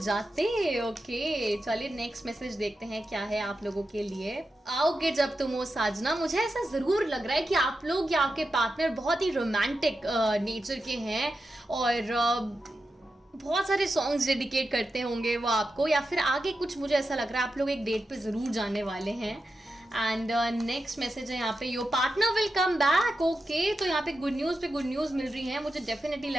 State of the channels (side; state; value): both; normal; correlation 0.90